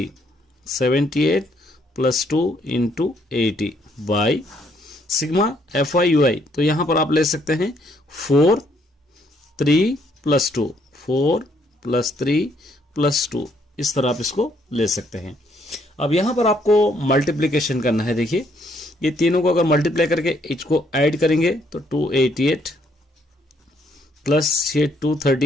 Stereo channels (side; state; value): both; normal; correlation 0.69